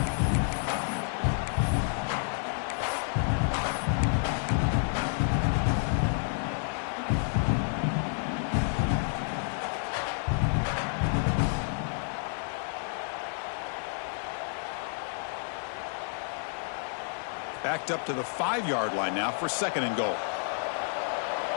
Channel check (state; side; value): silent; right; 58 dB below the other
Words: backed up to the 5-yard line now for 2nd and goal.